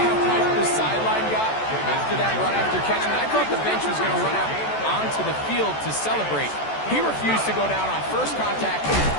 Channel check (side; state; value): right; late; 14 ms